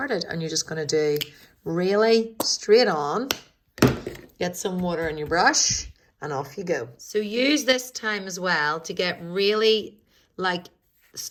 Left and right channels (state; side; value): identical; both; correlation 1.00